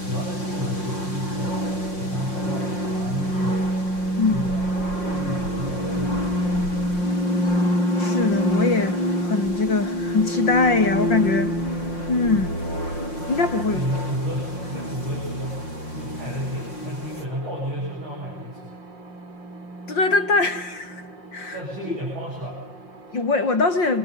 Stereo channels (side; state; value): right; late; 5.6 ms